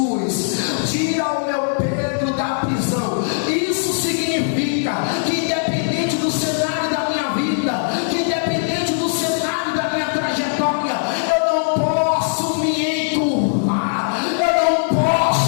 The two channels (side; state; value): right; silent; digital silence